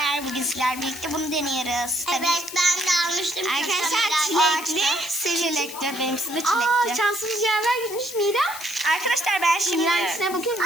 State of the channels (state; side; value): noise; left; hiss, 12 dB below the sound